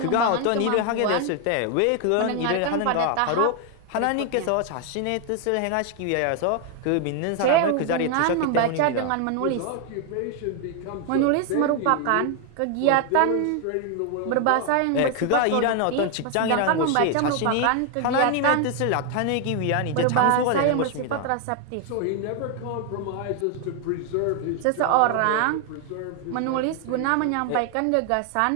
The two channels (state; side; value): different; both; correlation 0.01